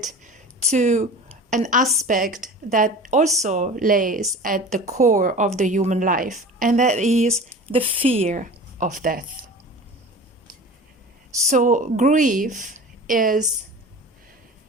to an aspect that also lays at the core of the human life, and that is the fear of death. So grief is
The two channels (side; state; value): both; normal; correlation 0.37